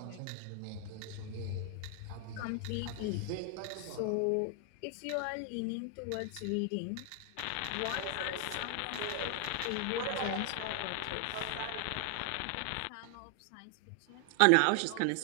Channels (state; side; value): different; both; correlation 0.00